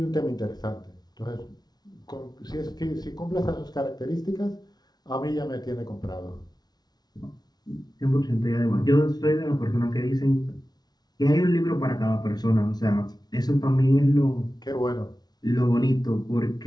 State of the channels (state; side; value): late; right; 0.19 ms